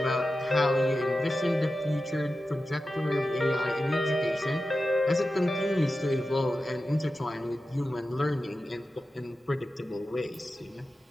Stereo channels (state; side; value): normal; both; correlation 0.93